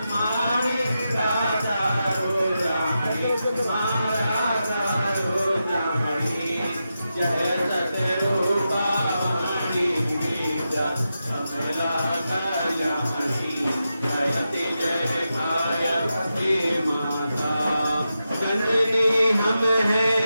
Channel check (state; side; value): inverted; both; correlation -0.89